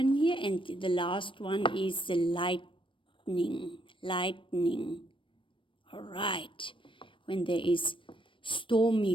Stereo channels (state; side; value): late; right; 0.25 ms